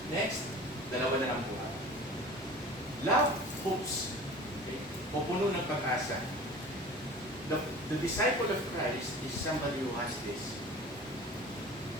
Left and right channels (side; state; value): both; normal; correlation 0.40